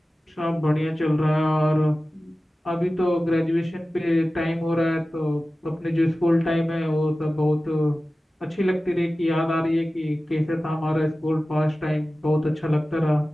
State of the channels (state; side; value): normal; both; correlation 0.96